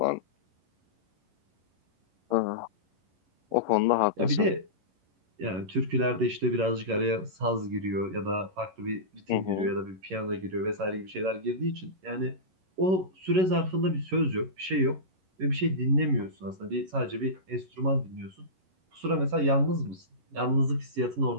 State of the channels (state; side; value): late; left; 11 ms